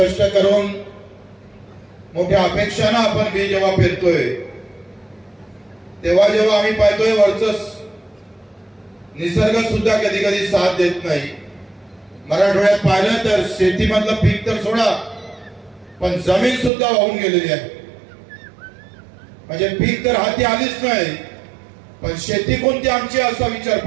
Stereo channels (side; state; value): left; drops out; at 16.7 s